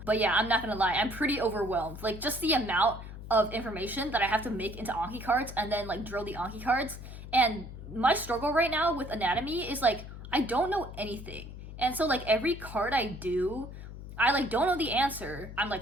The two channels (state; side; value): noise; left; hum, 12 dB below the sound